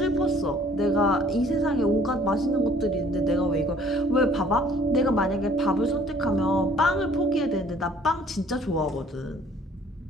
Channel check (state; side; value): normal; both; correlation 0.57